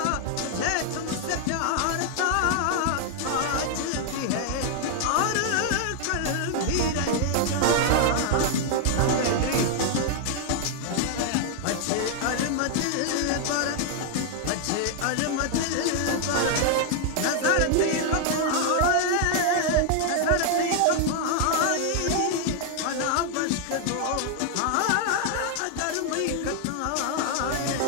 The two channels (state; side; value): different; both; correlation 0.00